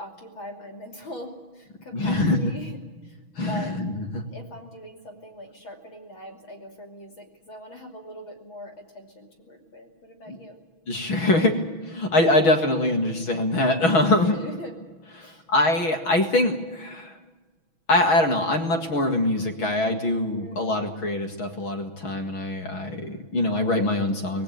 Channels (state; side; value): late; right; 6.2 ms